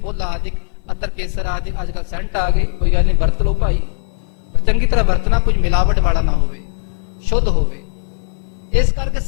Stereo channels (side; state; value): right; silent; 60 dB below the other